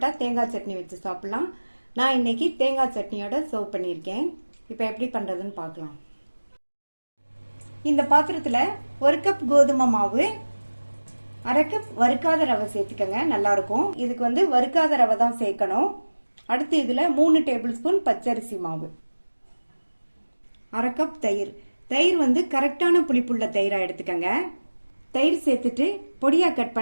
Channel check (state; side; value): inverted; both; correlation -1.00